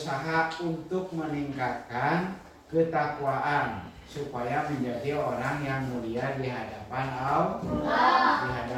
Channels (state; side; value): identical; both; correlation 1.00